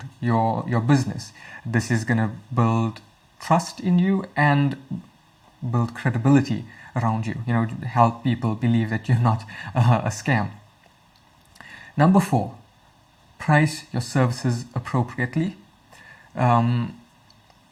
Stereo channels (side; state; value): both; identical; correlation 1.00